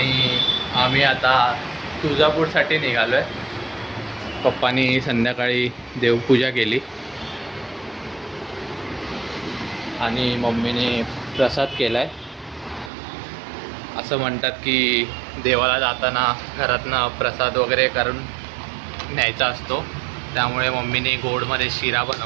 आम्ही आता तुळजापूरसाठी निघालो आहे. पप्पांनी संध्याकाळी देवपूजा केली आणि मम्मीने प्रसाद केला आहे. असं म्हणतात की देवाला जाताना घरातनं प्रसाद वगैरे करून न्यायचा असतो, त्यामुळे मम्मीने गोडमध्ये शिरा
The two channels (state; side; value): drops out; left; at 12.9 s